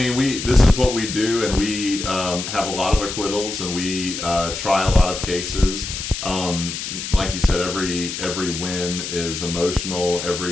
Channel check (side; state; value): left; noise; hiss, 6 dB below the sound